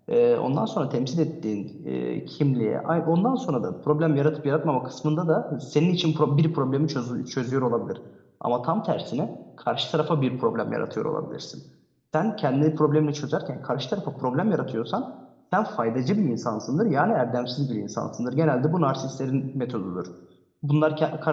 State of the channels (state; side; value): identical; both; correlation 1.00